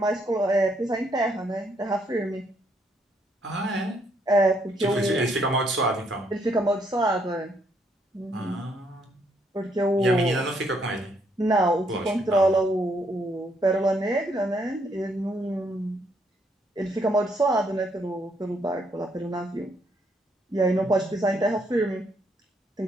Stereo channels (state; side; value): normal; both; correlation 0.72